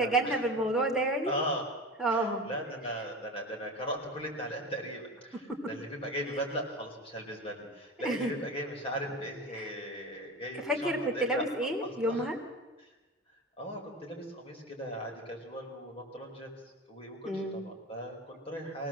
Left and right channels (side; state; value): both; normal; correlation 0.29